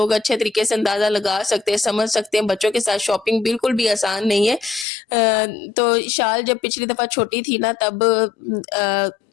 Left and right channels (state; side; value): drops out; right; at 4.9 s